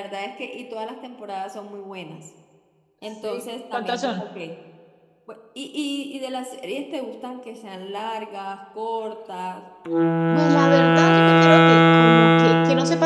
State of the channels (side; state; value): both; identical; correlation 1.00